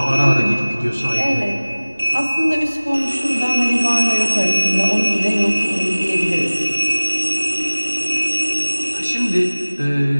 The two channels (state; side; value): inverted; both; correlation -1.00